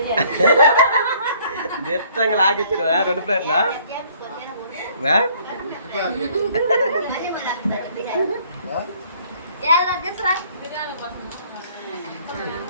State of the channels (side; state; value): both; inverted; correlation -0.60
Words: దిట్టంగా లాగిచ్చిన 2 ప్లేట్లా